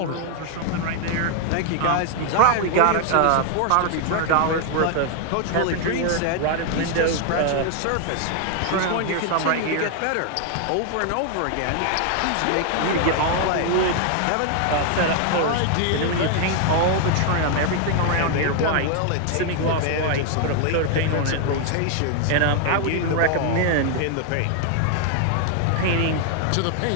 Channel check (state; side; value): different; both; correlation 0.00